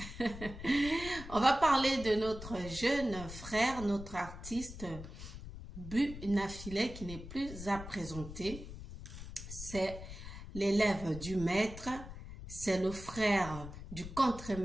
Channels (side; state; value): left; noise; rumble, 11 dB below the sound